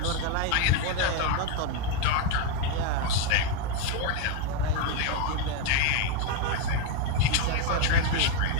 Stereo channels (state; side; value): different; both; correlation 0.02